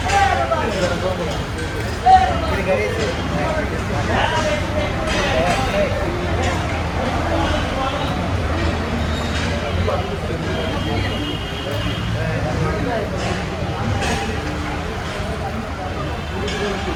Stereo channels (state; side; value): identical; both; correlation 1.00